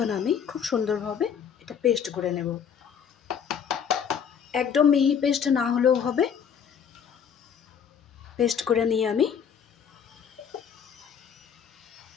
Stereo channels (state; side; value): quieter; right; 7.5 dB